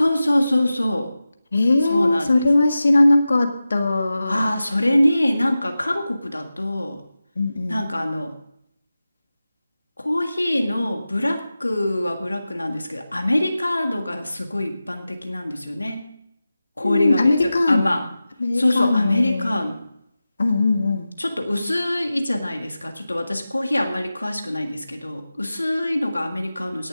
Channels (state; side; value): inverted; both; correlation -0.94